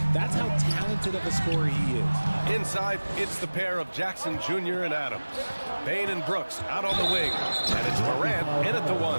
That's how talented of a scorer he is. Inside, it's the pair of Jackson Jr. and Adams. Bane and Brooks out on the wing. And it's Morant in at the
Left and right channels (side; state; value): both; inverted; correlation -1.00